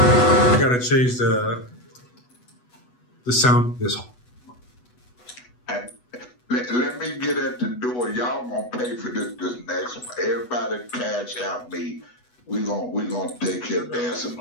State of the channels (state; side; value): late; right; 8.1 ms